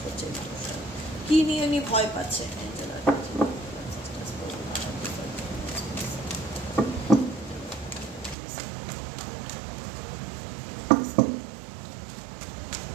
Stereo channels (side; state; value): left; drops out; at 8.3 s